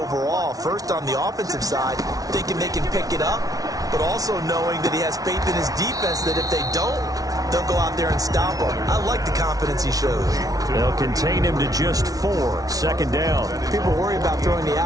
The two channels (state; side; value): late; left; 0.18 ms